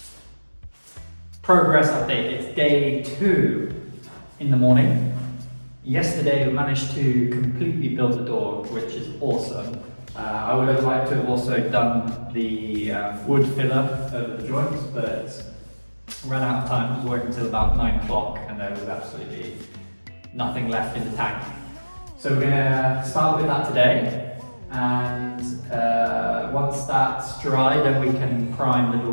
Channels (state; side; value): inverted; both; correlation -1.00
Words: Progress update, it's day 2 in the morning. Yesterday we managed to completely build the door, which is awesome. I would have liked to have also done the wood filler over the joints, but ran out of time. It was working until about 9 o'clock and there was absolutely nothing left in the tank. So we're gonna start with that today, and once that's dry then we can prime the